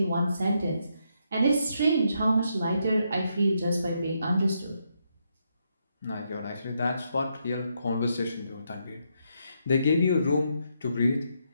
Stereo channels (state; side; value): inverted; both; correlation -0.79